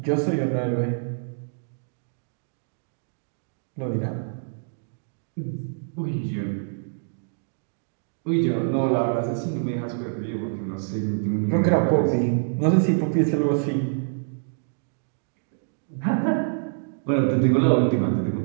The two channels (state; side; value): silent; left; digital silence